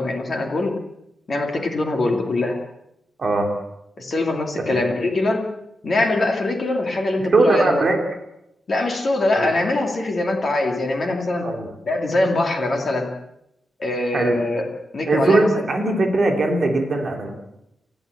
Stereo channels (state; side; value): normal; both; correlation 0.86